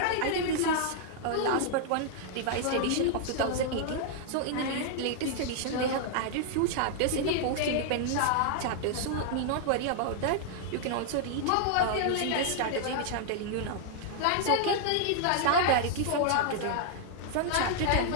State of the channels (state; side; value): different; both; correlation -0.01